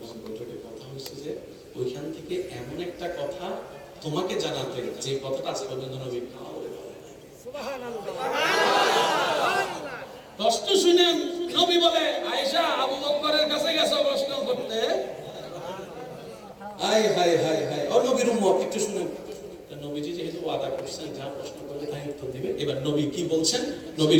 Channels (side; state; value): both; identical; correlation 1.00